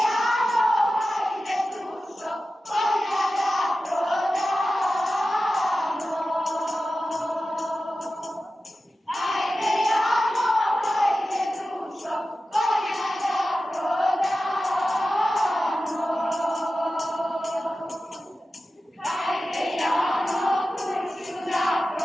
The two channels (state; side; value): normal; both; correlation 0.94